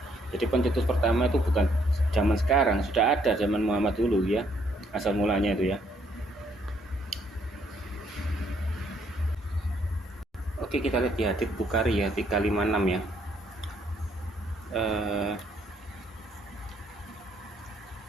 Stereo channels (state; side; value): normal; both; correlation 0.69